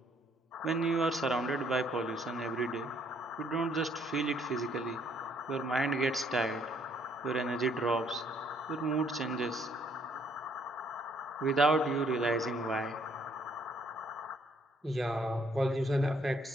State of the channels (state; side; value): normal; both; correlation 0.66